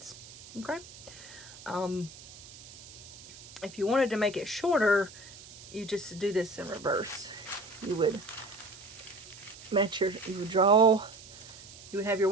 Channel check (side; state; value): right; noise; hiss, 17 dB below the sound